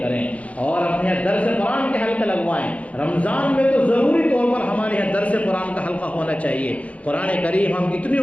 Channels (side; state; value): right; late; 0.066 ms